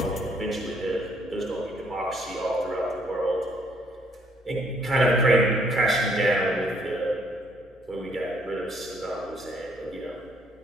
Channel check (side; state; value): both; normal; correlation 0.67